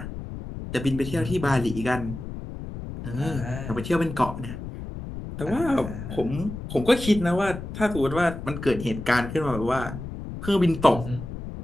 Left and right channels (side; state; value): left; noise; rumble, 9 dB below the sound